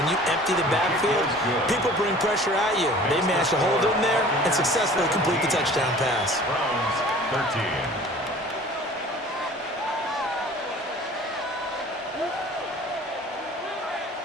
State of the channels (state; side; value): normal; both; correlation 0.46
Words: you empty the backfield, people bring pressure at you. They managed to hold in there and successfully complete the touchdown pass. Browns 13.